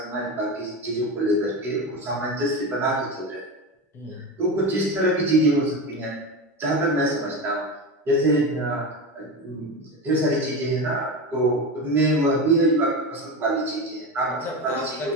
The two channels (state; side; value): normal; both; correlation 0.21